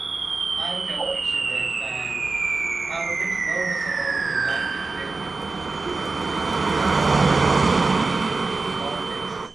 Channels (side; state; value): left; quieter; 3.8 dB